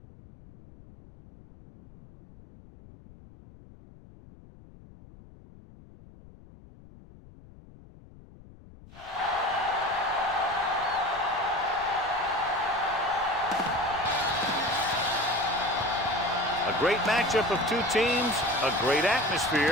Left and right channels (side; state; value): left; noise; rumble, 21 dB below the sound